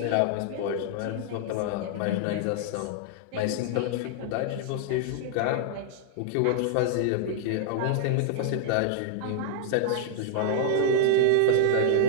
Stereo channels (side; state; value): both; different; correlation -0.01